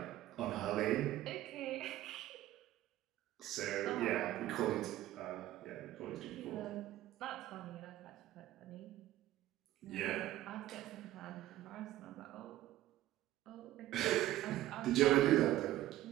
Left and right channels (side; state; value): left; quieter; 14.6 dB